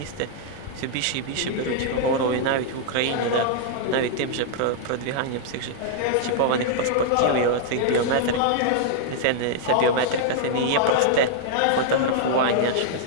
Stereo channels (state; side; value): different; both; correlation -0.01